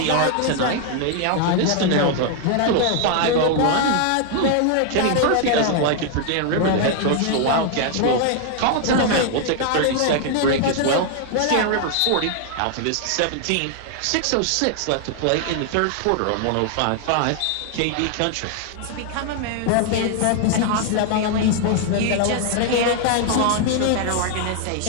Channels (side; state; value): both; different; correlation 0.00